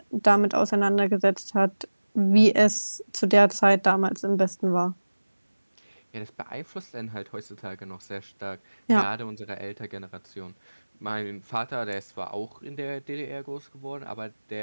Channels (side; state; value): both; inverted; correlation -1.00